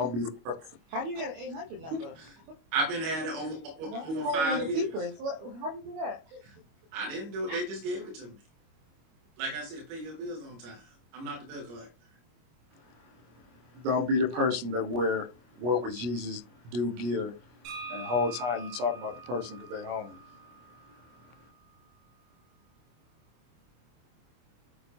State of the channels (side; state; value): left; late; 25 ms